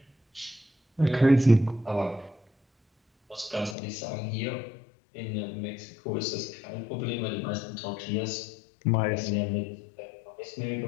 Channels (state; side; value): drops out; right; at 3.8 s